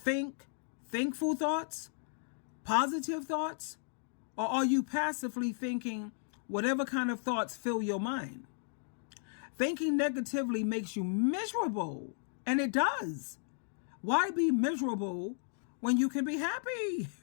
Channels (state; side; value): silent; right; digital silence